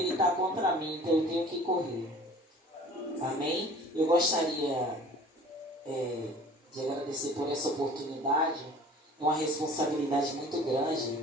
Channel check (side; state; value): both; normal; correlation 0.47